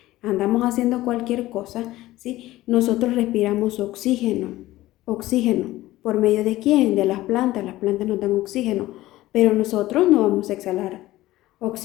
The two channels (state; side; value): quieter; right; 16.6 dB